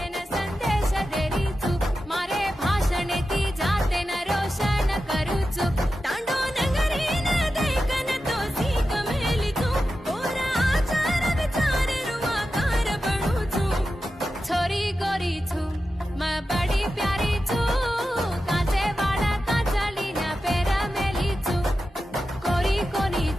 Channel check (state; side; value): normal; both; correlation 0.92